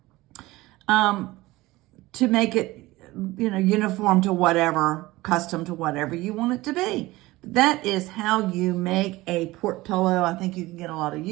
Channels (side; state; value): left; quieter; 19.2 dB